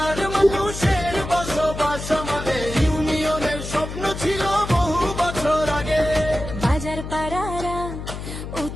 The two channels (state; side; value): noise; left; hum, 8 dB below the sound